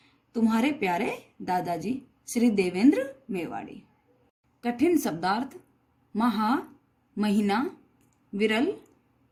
तुम्हारे प्यारे दादाजी श्री देवेंद्र मेवाड़ी। कठिन शब्दार्थ: महा, महीना, विरल,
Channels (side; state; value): both; identical; correlation 1.00